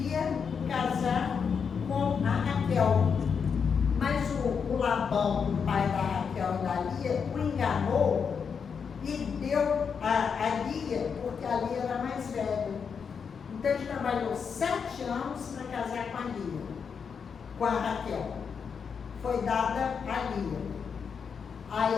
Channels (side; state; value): right; quieter; 6.3 dB